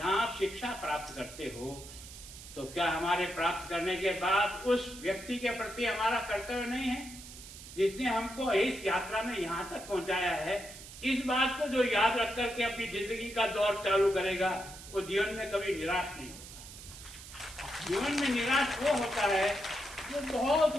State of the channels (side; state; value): right; noise; hiss, 15 dB below the sound